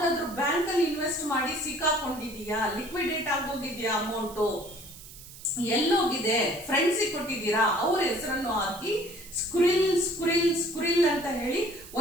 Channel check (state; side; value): noise; right; hiss, 17 dB below the sound